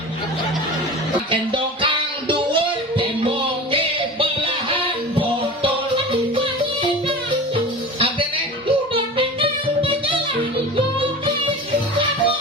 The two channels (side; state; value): both; normal; correlation 0.33